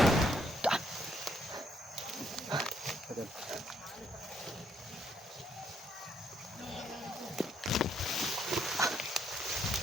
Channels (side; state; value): both; normal; correlation 0.72